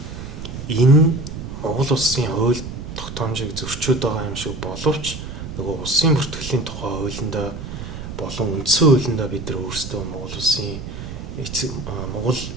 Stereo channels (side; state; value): right; noise; rumble, 9 dB below the sound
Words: энэ Монгол улсын хууль тогтоомжийг зөрчөөд байгаа юм шиг боловч нөгөө улсын бүртгэлийн тухай хуулиндаа болон үндсэн хуулиндаа бид нар өөрсдөө Монгол улсын Монгол